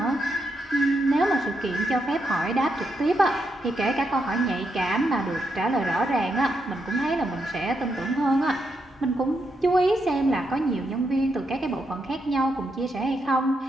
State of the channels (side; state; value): both; normal; correlation 0.82